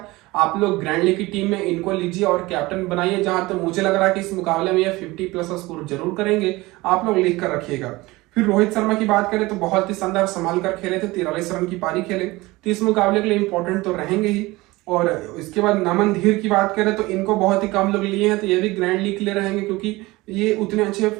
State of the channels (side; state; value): left; quieter; 20.8 dB